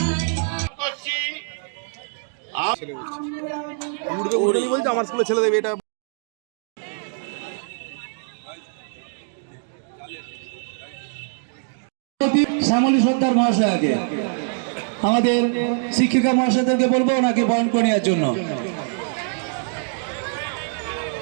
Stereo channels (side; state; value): left; silent; 63 dB below the other